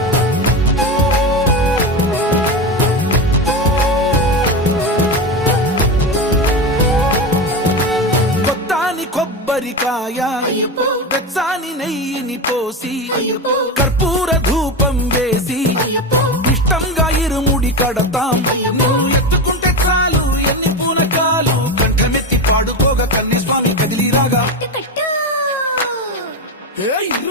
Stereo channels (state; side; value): normal; both; correlation 0.19